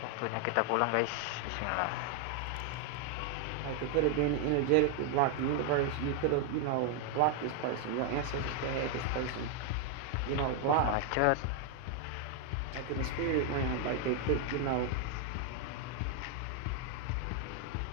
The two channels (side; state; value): both; different; correlation 0.00